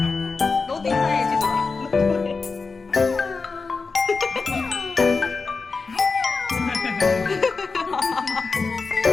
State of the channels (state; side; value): quieter; right; 4.4 dB